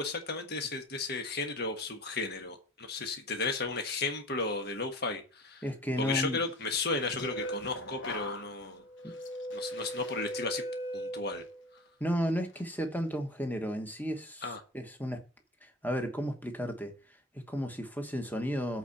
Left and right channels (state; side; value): normal; both; correlation 0.38